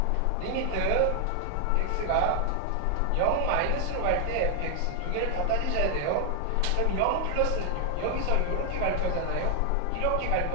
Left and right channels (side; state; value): both; different; correlation 0.00